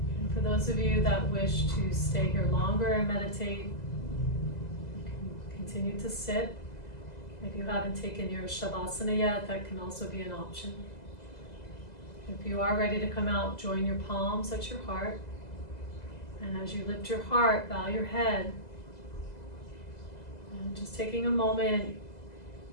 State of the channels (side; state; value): right; late; 2.0 ms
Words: And for those of you that wish to stay here longer and meditate, you can continue to sit. If you haven't taken your Shavasana yet, that can also be an option. If you are ready to come out, join your palms at your heart. And as you lift your heart, bow your head. And just taking a moment